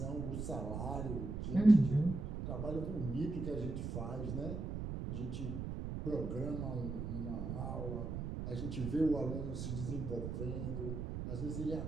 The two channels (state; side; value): noise; right; rumble, 4 dB below the sound